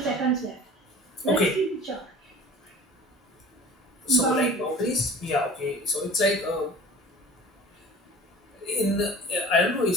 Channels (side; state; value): both; normal; correlation 0.42